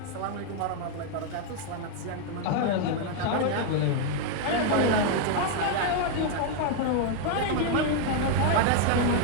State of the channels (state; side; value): different; both; correlation 0.00